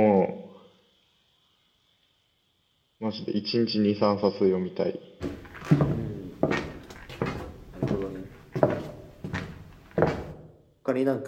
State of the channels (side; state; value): both; identical; correlation 1.00